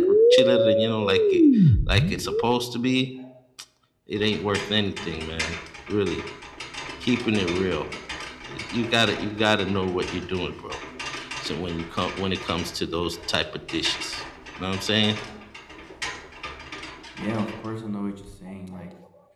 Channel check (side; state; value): both; identical; correlation 1.00